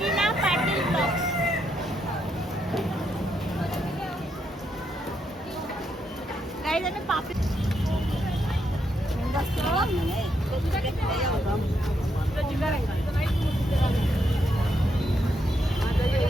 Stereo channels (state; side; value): normal; both; correlation 0.79